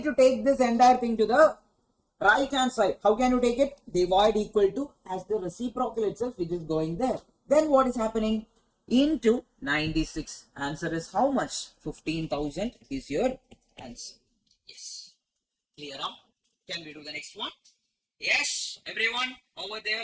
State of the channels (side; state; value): both; identical; correlation 1.00